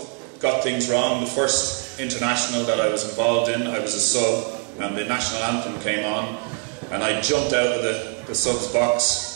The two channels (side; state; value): left; quieter; 32.8 dB